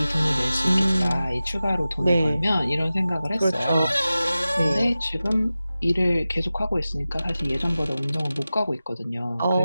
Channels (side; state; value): both; inverted; correlation -0.95